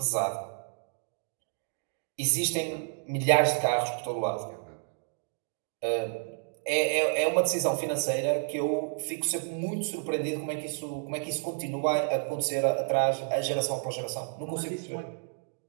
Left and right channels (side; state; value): left; silent; digital silence